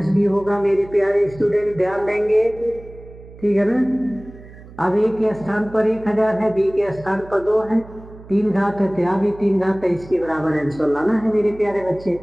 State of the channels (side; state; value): right; noise; hum, 19 dB below the sound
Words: बी होगा मेरे प्यारे स्टूडेंट, ध्यान देंगे। ठीक है ना। अब a के स्थान पर 1000 है, b के स्थान पर 2 है, 3 घात है तो यहाँ भी 3 घात है, इसके बराबर आंसर लाना है मेरे प्यारे बच्चे।